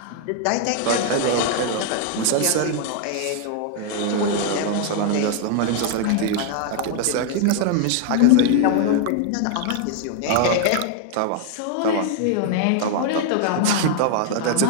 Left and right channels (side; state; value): both; different; correlation 0.00